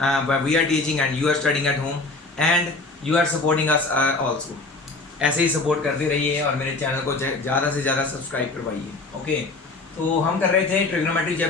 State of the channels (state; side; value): quieter; right; 3.4 dB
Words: But we are teaching and you are studying at home and you are supporting us also. ऐसे ही सपोर्ट करते रहिए और मेरे चैनल को ज़्यादा से ज़्यादा सब्सक्राइब करवाइए। ओके, तो हम कर रहे थे ट्रिग्नोमेट्री